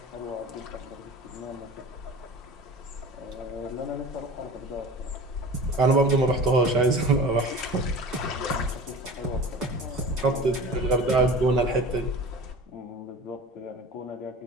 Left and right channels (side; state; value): both; normal; correlation 0.37